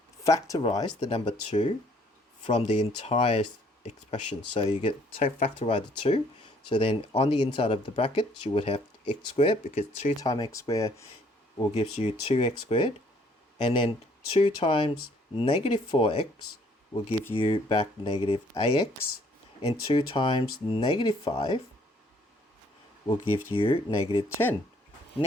the number 2 from the entire expression. So you get factorize the 2. So then on the inside of the bracket, you would have x squared, because 2 times x squared will give you 2x squared. And then 2 times -4x will give you back -ax. And 2 times -5 will give you -10.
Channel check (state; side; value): normal; both; correlation 0.63